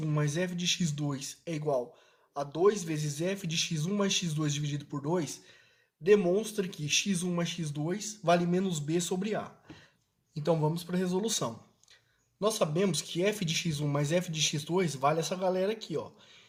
mais f de x2 é igual a 2 vezes f de x1 mais x2 dividido por 2, demonstra que x1 mais x2 vale menos b sobre a. Então vamos para a resolução. Nós sabemos que f de x1 mais f de x2 vale essa galera aqui, ó.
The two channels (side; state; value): both; identical; correlation 1.00